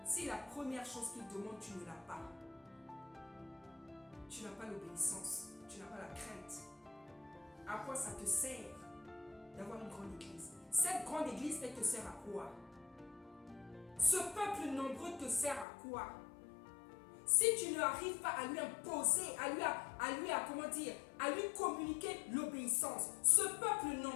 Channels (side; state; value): right; drops out; at 15.7 s